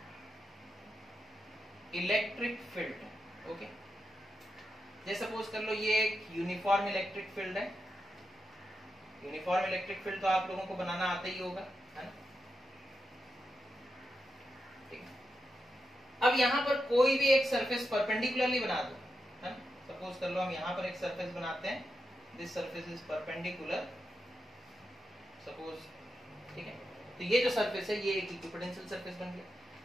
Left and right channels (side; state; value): both; normal; correlation 0.87